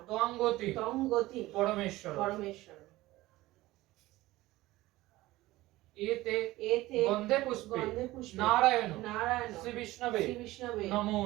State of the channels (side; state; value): left; quieter; 18.0 dB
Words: ত্বঙ্গতি তং গতি পরমেশ্বর। পরমেশ্বর। এতে এতে গন্ধে পুষ্পে গন্ধে পুষ্পে নারায়ণ নারায়ণ শ্রী বিষ্ণবে শ্রী বিষ্ণবে নমো